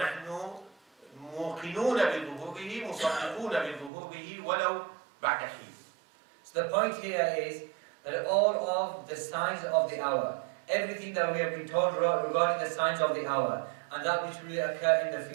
موقنون بظهوره، مصدقون بظهوره ولو بعد حين. So the point here is that all of the signs of the hour, everything that we have been told regarding the signs of the hour, and that which will occur in the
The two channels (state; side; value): drops out; left; at 3.9 s